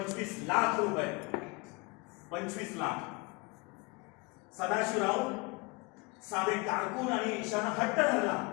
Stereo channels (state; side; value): quieter; right; 27.7 dB